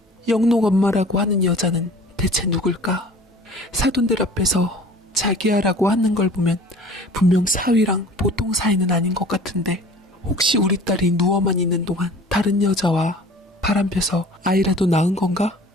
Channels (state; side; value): normal; both; correlation 0.45